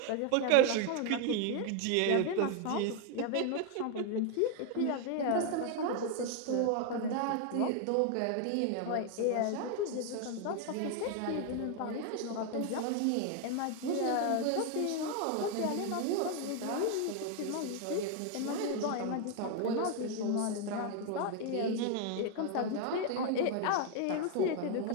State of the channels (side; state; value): both; different; correlation 0.01